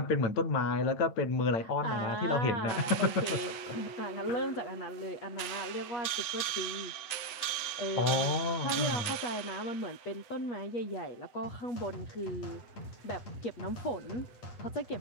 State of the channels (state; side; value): late; right; 7.9 ms